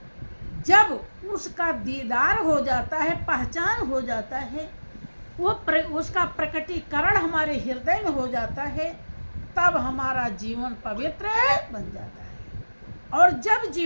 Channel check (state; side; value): inverted; both; correlation -1.00